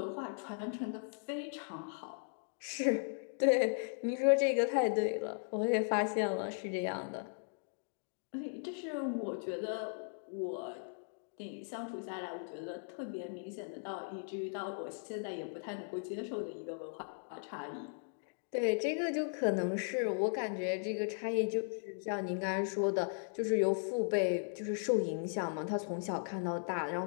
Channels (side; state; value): right; silent; digital silence